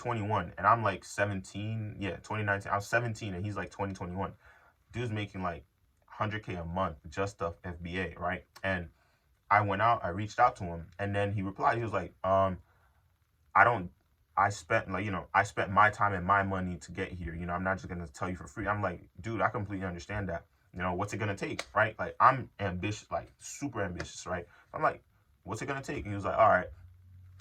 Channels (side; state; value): both; identical; correlation 1.00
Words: and I'm like 17. Yeah, 2019. I was 17, and he's like 20, 21. Dude's making like 100K a month just off FBA, right? And I went out, I reached out to him, and then he replied. He was like, I don't. I spent like I spent my time and my money to get here. I'm not just gonna tell you for free. I'm like, dude, I completely understand that. What's it gonna take, right? Like I'm ambitious, like super ambitious, right? I'm like, what's it gonna take? And he was like, all right,